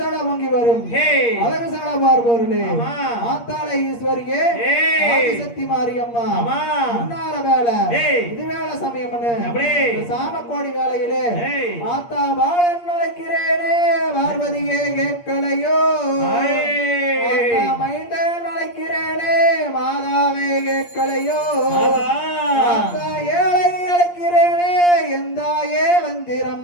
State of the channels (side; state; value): right; late; 8.6 ms